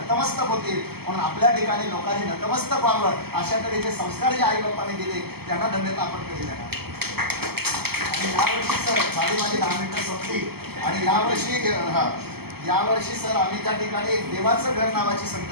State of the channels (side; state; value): left; late; 0.96 ms